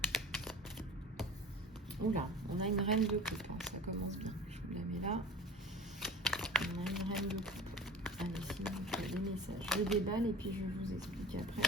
Oula, on a une reine de coupe, hein, ça commence bien. Je vous la mets là. On a une reine de coupe. Allez, sinon, il y a des messages. Je déballe et puis je vous explique après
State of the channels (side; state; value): both; normal; correlation 0.39